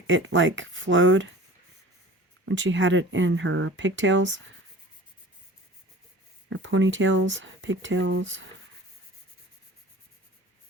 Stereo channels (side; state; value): both; normal; correlation 0.43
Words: it like flowed when she had it in her pigtails. Or ponytails, pigtails.